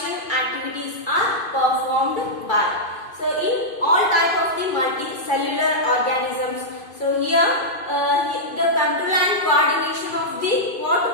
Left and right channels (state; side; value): late; right; 2.5 ms